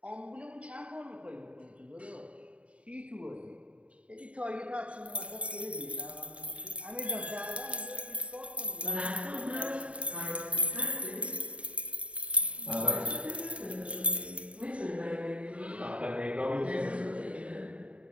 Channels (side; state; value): left; late; 0.063 ms